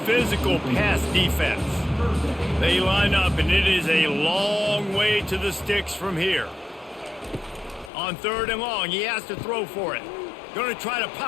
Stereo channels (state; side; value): drops out; right; at 7.9 s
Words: pass defense. They line up, and it is a long way to the sticks from here. On third and long, he has to throw for it. Going to try to